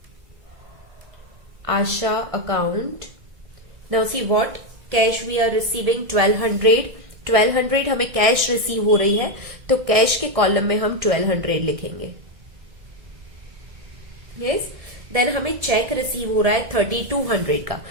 Asha account. Now see what cash we are receiving 1200 हमें कैश रिसीव हो रही है, तो कैश के कॉलम में हम 1200 लिखेंगे. यस, देन हमें चेक रिसीव हो रहा है 3200 का,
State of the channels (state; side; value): late; left; 1.6 ms